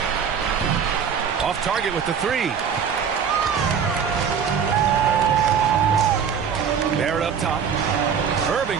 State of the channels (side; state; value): left; quieter; 7.1 dB